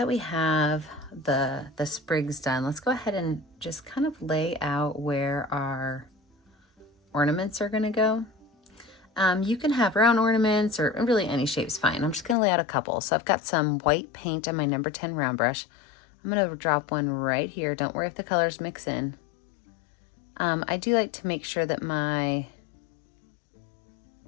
we have the sprigs done, let's go ahead and just kind of lay out where our ornaments are gonna go. You can have round ornaments or really any shape's fine. I'm just gonna lay out a couple. So I've got some white paint on my number 10 round brush. I'm gonna drop one right here. Don't worry if the colors mix in. I do like to make sure that my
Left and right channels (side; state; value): right; drops out; at 12.4 s